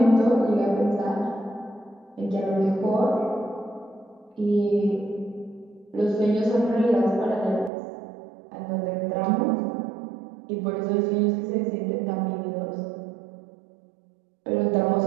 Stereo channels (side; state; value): left; drops out; at 7.7 s